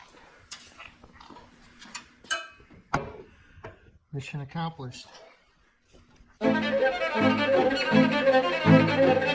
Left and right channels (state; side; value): identical; both; correlation 1.00